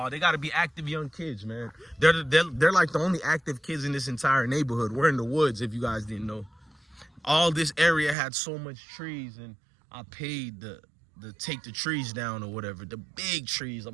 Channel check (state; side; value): drops out; left; at 8.2 s